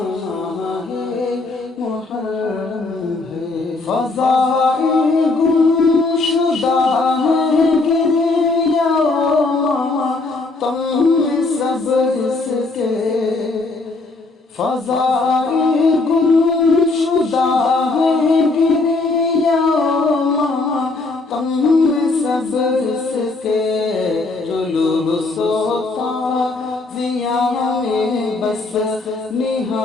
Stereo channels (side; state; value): right; quieter; 3.5 dB